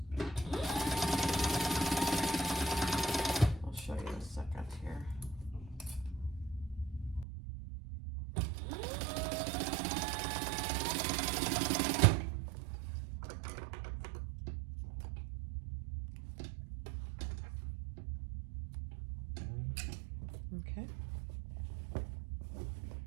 I'll show you in a second here. Okay.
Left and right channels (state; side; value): drops out; left; at 7.2 s